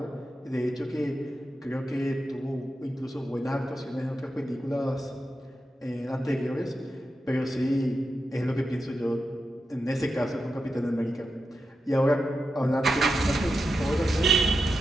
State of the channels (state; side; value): normal; both; correlation 0.88